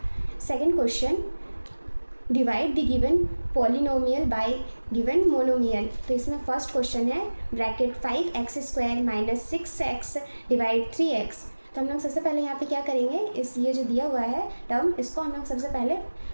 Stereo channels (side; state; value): both; inverted; correlation -1.00